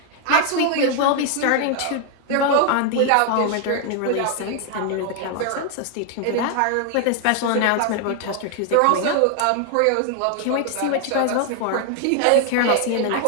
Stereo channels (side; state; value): both; different; correlation 0.00